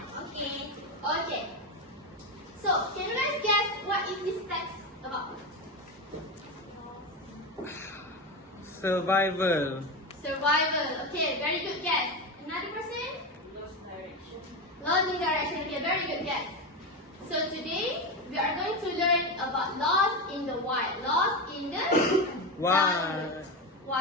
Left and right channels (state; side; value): normal; both; correlation 0.17